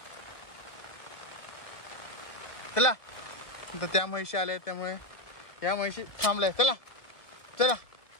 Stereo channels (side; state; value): right; late; 1.3 ms